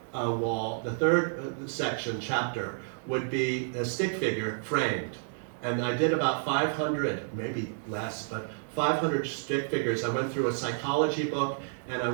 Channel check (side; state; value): left; silent; digital silence